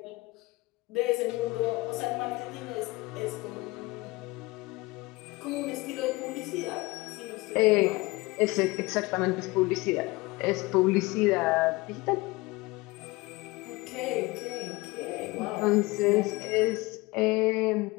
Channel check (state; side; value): quieter; right; 22.3 dB